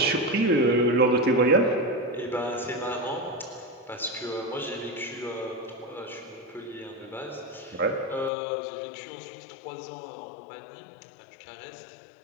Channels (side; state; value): right; drops out; at 8.3 s